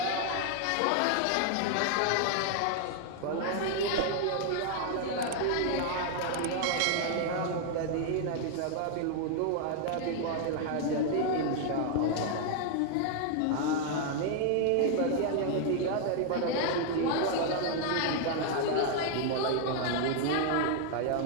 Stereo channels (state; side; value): different; both; correlation 0.00